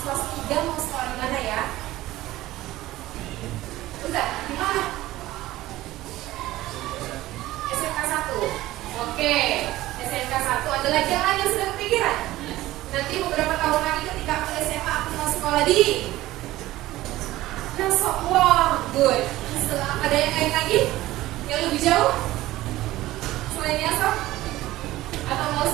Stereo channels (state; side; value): quieter; left; 16.5 dB